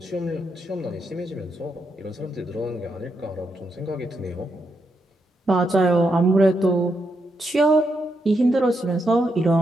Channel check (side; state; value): both; normal; correlation 0.82